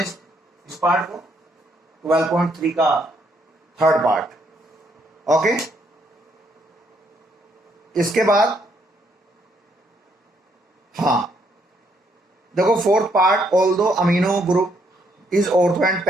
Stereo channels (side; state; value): both; normal; correlation 0.72